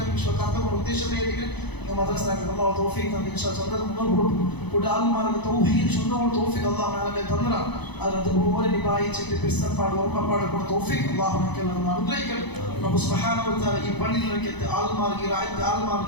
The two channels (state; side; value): late; right; 0.99 ms